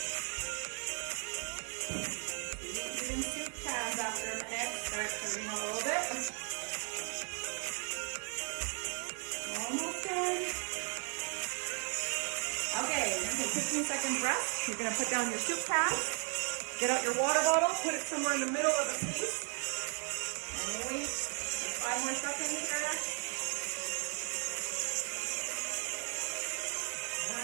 After a minute, start turning a little bit. Almost done. Okay, you're gonna take 15-second rest. You're gonna put down your soup can, get out your water bottle, put it somewhere in the middle of the piece, and wait 5 more seconds here.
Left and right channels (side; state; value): left; quieter; 39.8 dB